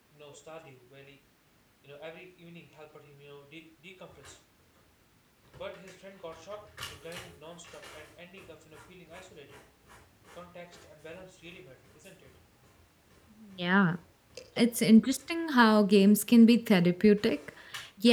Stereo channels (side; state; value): both; identical; correlation 1.00